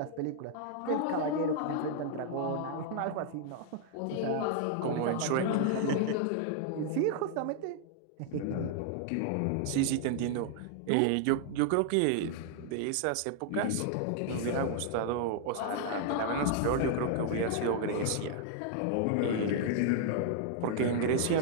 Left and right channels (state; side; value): different; both; correlation -0.01